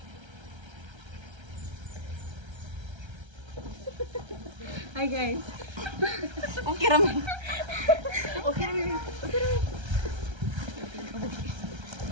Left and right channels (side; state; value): left; late; 1.3 ms